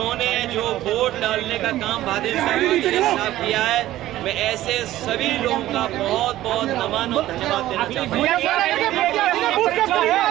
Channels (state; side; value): quieter; left; 14.7 dB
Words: जो वोट डालने का काम भाजपा के खिलाफ किया है, मैं ऐसे सभी लोगों का बहुत बहुत नमन और धन्यवाद देना चाहता हूँ।